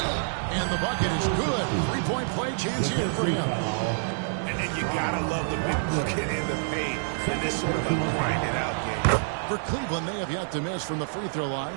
And the bucket is good. Three-point play chance here for him. And then you gotta love the big bucket in the paint in this sort of a grinded out game. For Cleveland, they have yet to miss from the free throw line.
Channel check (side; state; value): left; silent; digital silence